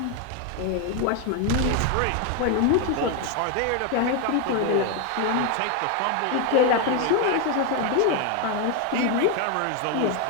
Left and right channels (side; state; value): both; different; correlation 0.01